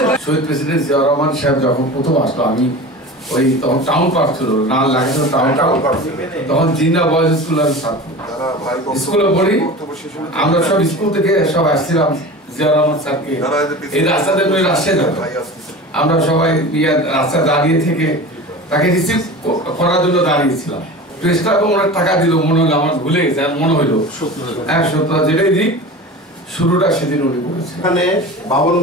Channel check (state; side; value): normal; both; correlation 0.34